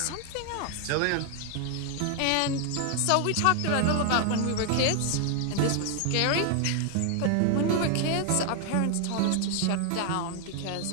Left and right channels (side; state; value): both; different; correlation 0.00